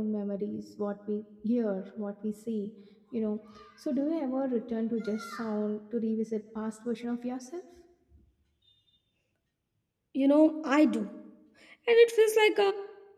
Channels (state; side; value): identical; both; correlation 1.00